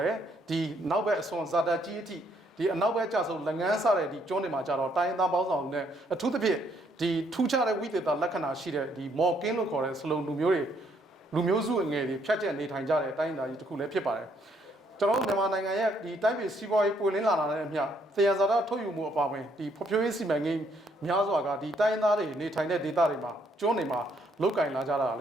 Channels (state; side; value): normal; both; correlation 0.70